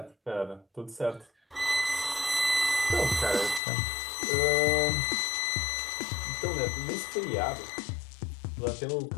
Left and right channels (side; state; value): right; drops out; at 3.6 s